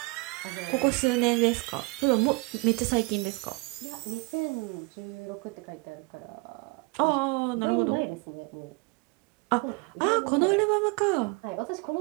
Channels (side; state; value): left; quieter; 27.2 dB